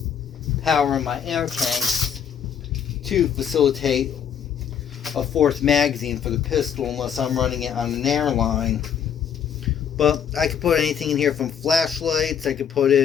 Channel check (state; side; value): quieter; right; 8.2 dB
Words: power in my air tanks to facilitate a fourth magazine for the pistol unless I'm running it on an airline. But I could put anything in here from flashlights. I could put